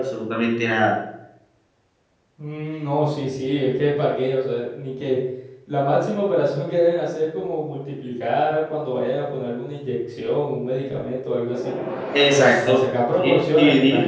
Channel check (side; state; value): both; identical; correlation 1.00